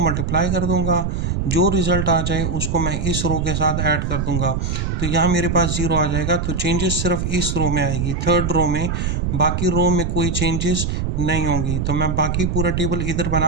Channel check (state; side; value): noise; right; rumble, 1 dB below the sound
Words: मल्टीप्लाई कर दूँगा, जो रिज़ल्ट आ जाए उसको मैं इस रो के साथ ऐड कर दूँगा, तो यहाँ मेरे पास 0 आ जाएगा। तो चेंजेस सिर्फ इस रो में आएगी, थर्ड रो में, बाकी रो में कोई चेंजेस नहीं होंगी। तो मैं बाकी पूरा टेबल इधर